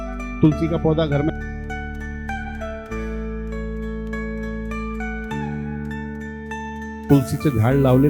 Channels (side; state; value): both; identical; correlation 1.00